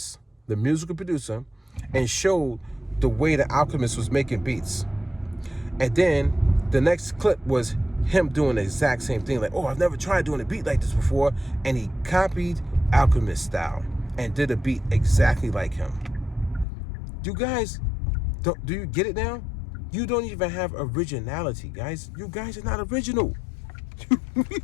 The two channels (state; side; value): drops out; right; at 16.7 s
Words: the musical producer, and showed the way the Alchemist was making beats. And then the next clip was him doing the exact same thing. Like, oh, I've never tried doing a beat like this before. And he copied Alchemist style and did a beat exactly like him. You guys, do you get it now? You don't even have originality, guys. You guys are not original.